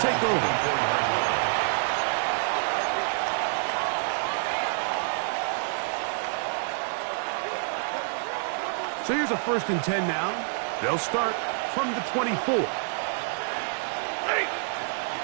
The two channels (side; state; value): left; silent; digital silence